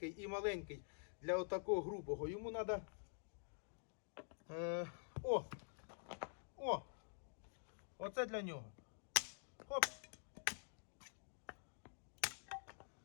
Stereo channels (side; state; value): right; silent; digital silence